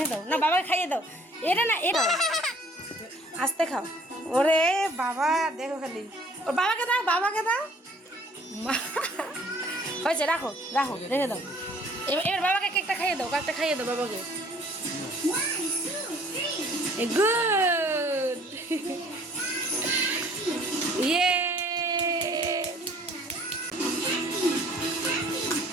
দাও, না বাবাকে খাইয়ে দাও। এটা না, এটা আস্তে খাও। ওরে বাবা, দেখো খালি, ওর বাবাকে দাও, বাবাকে দাও। হয়েছে, রাখো রাখো, রেখে দাও। এবার বাবাকে কেকটা খাইয়ে দাও, কেকটা খাইয়ে দাও বাবাকে। গুড, ইয়ে।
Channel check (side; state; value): both; normal; correlation 0.56